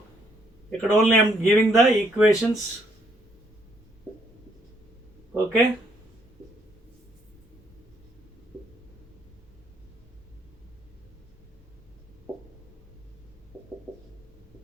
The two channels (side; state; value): both; normal; correlation 0.70